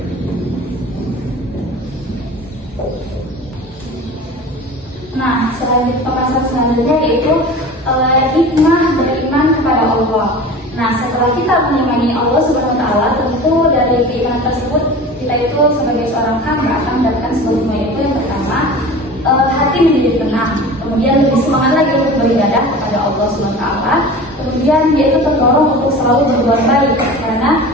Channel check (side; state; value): both; normal; correlation 0.37